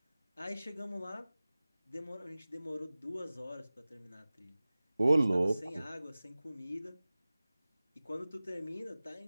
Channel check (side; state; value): both; inverted; correlation -0.98